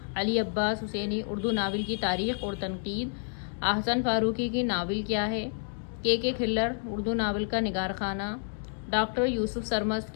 علی عباس حسینی اردو ناول کی تاریخ اور تنقید، احسن فاروقی کی ناول کیا ہے، کے کھلر اردو ناول کا نگار خانہ، ڈاکٹر یوسف سرمست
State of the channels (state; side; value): silent; right; digital silence